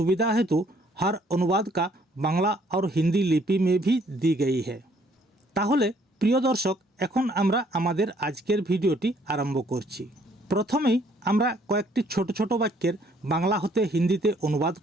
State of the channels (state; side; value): normal; both; correlation 0.64